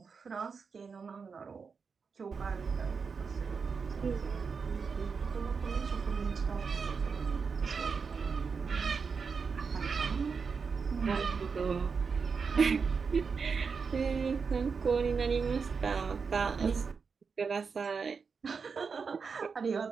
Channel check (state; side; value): quieter; left; 5.4 dB